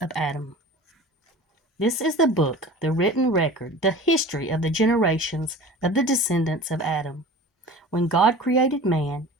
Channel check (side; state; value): both; normal; correlation 0.39